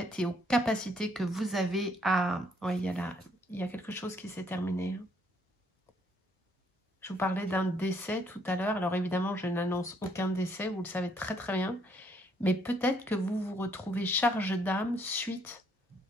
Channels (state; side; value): normal; both; correlation 0.69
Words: et aux capacités que vous avez à... Oui, il y a quelque chose qui s'est terminé. Je vous parlais d'un décès tout à l'heure. Alors évidemment, je n'annonce aucun décès, vous le savez très très bien. Mais peut-être que vous vous retrouvez charge d'âme suite